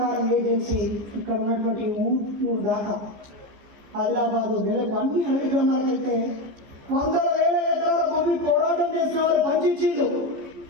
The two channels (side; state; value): left; late; 14 ms